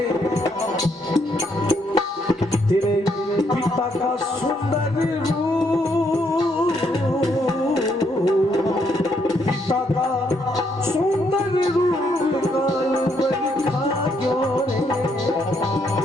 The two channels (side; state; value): both; normal; correlation 0.74